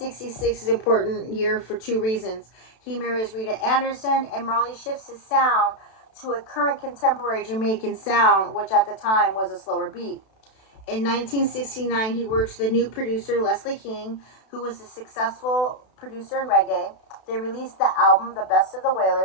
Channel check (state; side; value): late; right; 32 ms